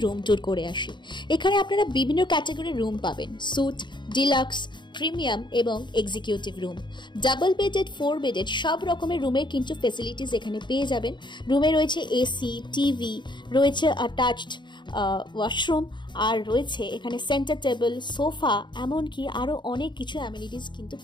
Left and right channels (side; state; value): right; late; 0.22 ms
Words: রুম ট্যুর করে আসি। এখানে আপনারা বিভিন্ন ক্যাটাগরির রুম পাবেন, স্যুট, ডিলাক্স, প্রিমিয়াম এবং executive room. Double bedded, 4 bedded সব রকমের রুমের কিন্তু ফেসিলিটিস এখানে পেয়ে যাবেন। রুমে রয়েছে এসি, টিভি, রয়েছে অ্যাটাচড ওয়াশরুম, আর রয়েছে এখানে সেন্টার টেবিল, সোফা, এমনকি আরও অনেক কিছু অ্যামিনিটিস কিন্তু